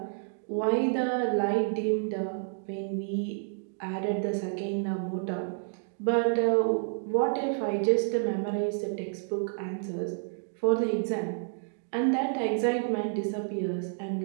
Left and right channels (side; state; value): left; silent; digital silence